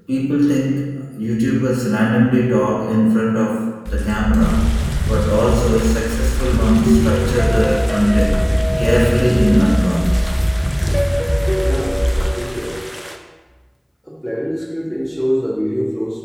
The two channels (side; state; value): both; identical; correlation 1.00